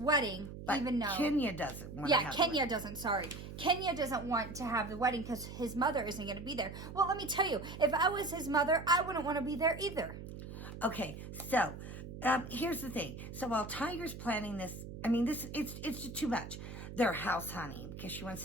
but even though Kenya doesn't want to have Kenya the wedding. doesn't, sorry. Kenya doesn't want to have the wedding because his mother isn't going to be there. Well, let me tell you, if I was his mother, I wouldn't want to be there either. Okay, so here's the thing. So while Tiger's planning this, I mean, it's just too much. They're house hunting because she wants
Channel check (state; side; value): noise; right; hum, 10 dB below the sound